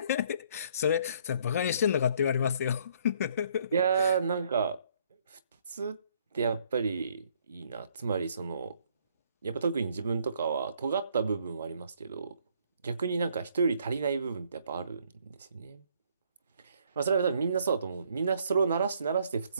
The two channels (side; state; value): both; inverted; correlation -0.65